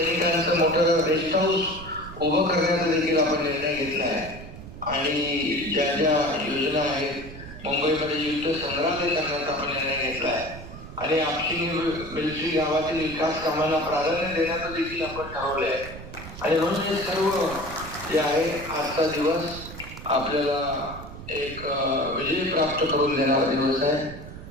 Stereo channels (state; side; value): noise; right; rumble, 13 dB below the sound